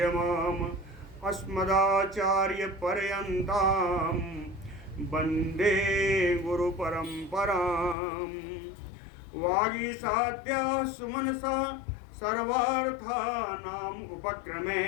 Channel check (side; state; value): right; drops out; at 8.0 s